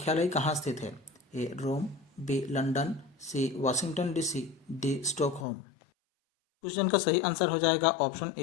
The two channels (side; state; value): right; drops out; at 5.5 s